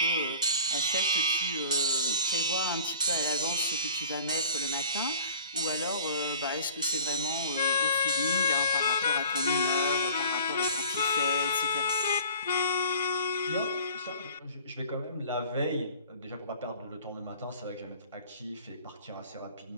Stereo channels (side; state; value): both; inverted; correlation -0.47